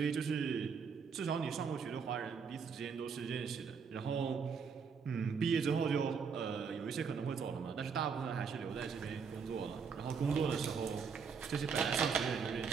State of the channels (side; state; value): left; quieter; 6.0 dB